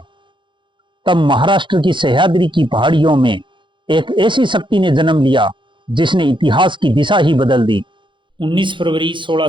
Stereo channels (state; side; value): late; left; 0.23 ms